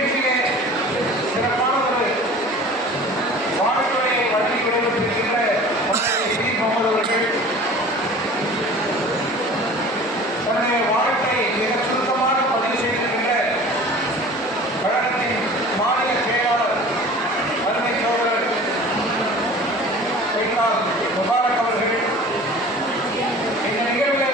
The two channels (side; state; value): both; normal; correlation 0.42